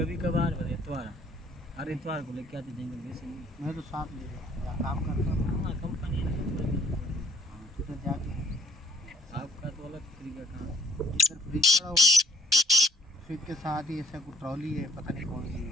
कभार, और इतवार हर इतवार को लेके आते जाएंगे। वैसे नहीं, मैं तो साथ ले रहा काम करता हूँ। हाँ कंपनी है तो फिर जाके आपका तो अलग तरीका काम। इधर फ्रिज पड़ा हुआ, फ्रिज के साथ ही ऐसा कोई ट्रॉली है, पता नहीं कौन सी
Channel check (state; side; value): normal; both; correlation 0.59